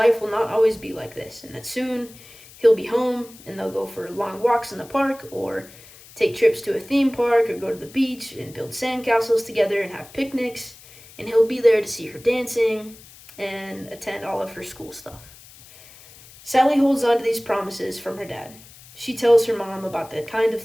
will not always be like this, and that soon he'll be home and they'll go for long walks in the park, or take trips to a theme park, or go to the beach and build sandcastles together and have picnics, and he'll be there to see her dancing and attend all of her school stuff. Sally holds on to these promises from her dad. She tells her mom about the kinds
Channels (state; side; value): noise; left; hiss, 21 dB below the sound